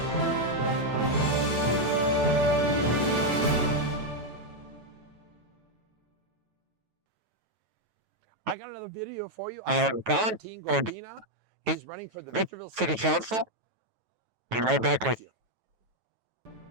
I got another video for you. I have Valentin Godina. He's running for the Victorville City Council. Be right back with you.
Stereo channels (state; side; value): late; left; 9.1 ms